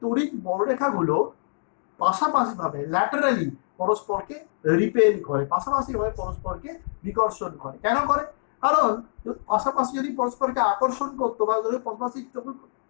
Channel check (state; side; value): silent; right; digital silence